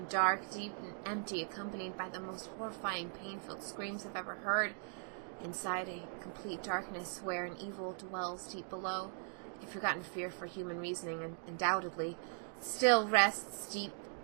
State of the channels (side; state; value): left; silent; 51 dB below the other